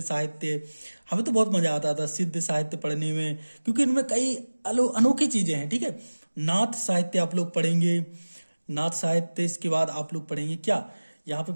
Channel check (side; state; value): both; inverted; correlation -1.00